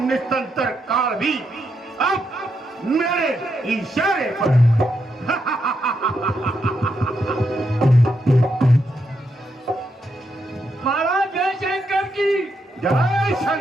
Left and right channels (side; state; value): both; normal; correlation 0.81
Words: काल भी अब मेरे इशारे पर महाराज जय शंकर की। जय